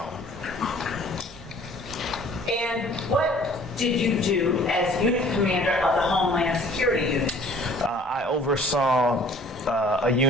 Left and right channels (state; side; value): normal; both; correlation 0.52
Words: And what did you do as unit commander of the Homeland Security unit? I oversaw a